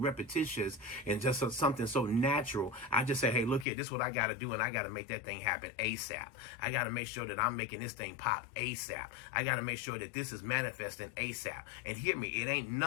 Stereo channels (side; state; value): right; drops out; at 3.7 s